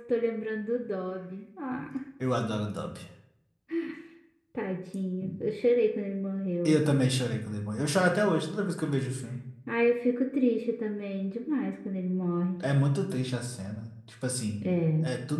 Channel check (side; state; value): both; identical; correlation 1.00